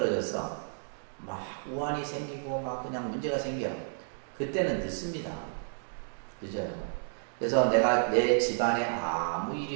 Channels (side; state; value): left; silent; digital silence